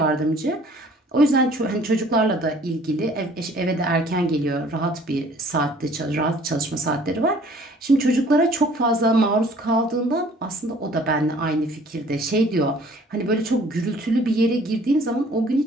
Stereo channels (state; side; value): normal; both; correlation 0.54